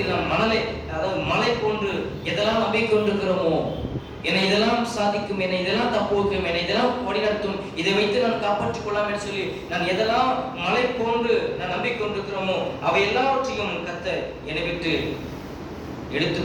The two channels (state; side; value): identical; both; correlation 1.00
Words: நாம் மலை போன்று எதெல்லாம் நம்பிக்கை கொண்டிருக்கிறோமோ, என்னை இதெல்லாம் சாதிக்கும், என்னை இதெல்லாம் தப்பு வைக்கும், என்னை இதெல்லாம் வழிநடத்தும், இதை வைத்து நான் காப்பாற்றிக் கொள்ளலாம் என்று சொல்லி நான் எதெல்லாம் மலை போன்று நான் நம்பிக்கை கொண்டிருக்கிறோமோ அவை எல்லாவற்றையும் கர்த்தர் என்னை விட்டு எடுத்து